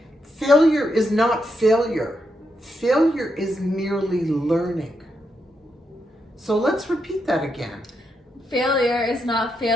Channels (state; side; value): normal; both; correlation 0.82